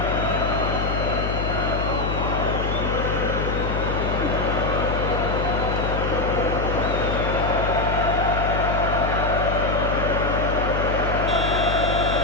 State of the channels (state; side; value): noise; left; hum, 2 dB below the sound